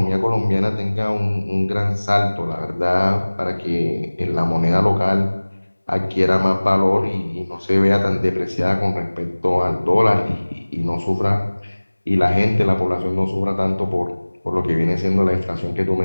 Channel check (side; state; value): both; inverted; correlation -1.00